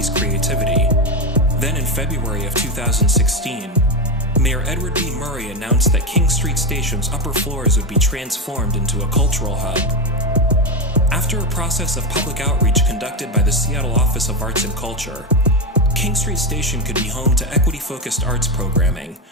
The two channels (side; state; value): both; normal; correlation 0.13